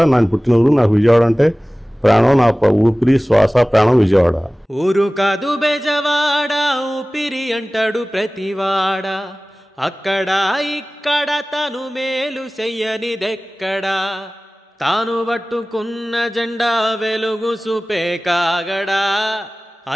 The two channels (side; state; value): both; normal; correlation 0.98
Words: నేను పుట్టిన ఊరు. నాకు విజయవాడ అంటే ప్రాణం, నా ఊపిరి శ్వాస ప్రాణం విజయవాడ. ఊరు కాదు బెజవాడ, ఊపిరి అంటాడు ప్రతివాడ. అక్కడ ఇక్కడ తను మేలు చెయ్యనిదెక్కడా, తాను పట్టుకున్న జెండా వెలుగు చూపే కాగడా.